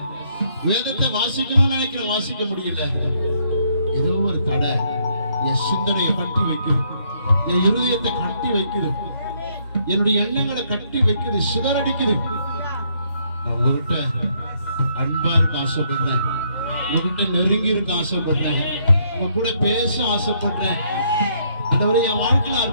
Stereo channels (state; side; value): inverted; both; correlation -0.70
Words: வேதத்தை வாசிக்கணும்னு நினைக்கிறேன், வாசிக்க முடியல. ஏதோ ஒரு தடை என் சிந்தனையை கட்டி வைக்குது, என் இருதயத்தை கட்டி வைக்குது, என்னுடைய எண்ணங்களை கட்டி வைக்குது, சிதறடிக்குது. நான் உங்ககிட்ட அன்பா இருக்க ஆசைப்படுறேன், உங்ககிட்ட நெருங்கி இருக்க ஆசைப்படுறேன், உங்க கூட பேச ஆசைப்படுறேன். ஆண்டவரே, என் வாழ்க்கையில